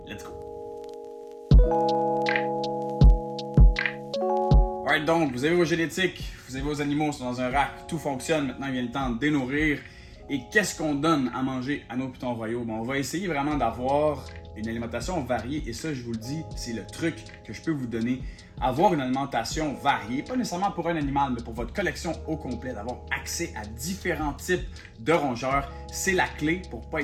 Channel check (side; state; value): both; identical; correlation 1.00